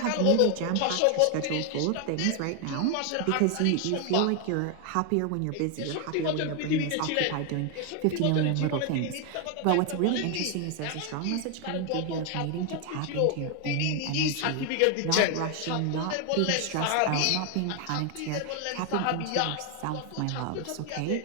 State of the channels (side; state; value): both; different; correlation 0.01